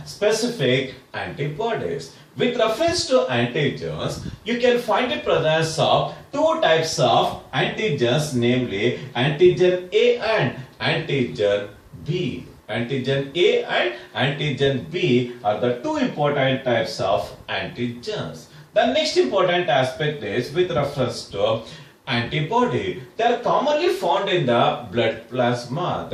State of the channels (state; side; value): identical; both; correlation 1.00